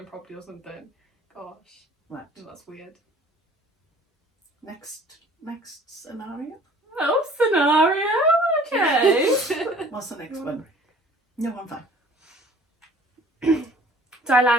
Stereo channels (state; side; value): normal; both; correlation 0.51